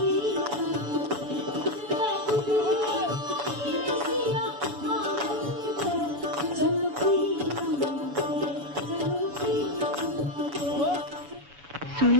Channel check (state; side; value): late; left; 7.0 ms